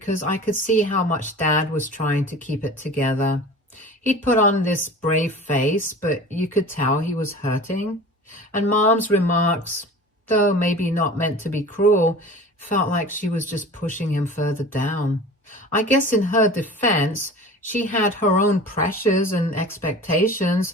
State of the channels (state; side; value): normal; both; correlation 0.39